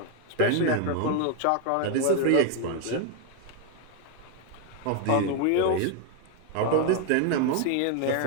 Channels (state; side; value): different; both; correlation 0.01